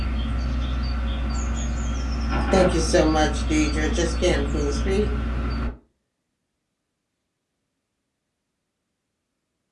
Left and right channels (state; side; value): identical; both; correlation 1.00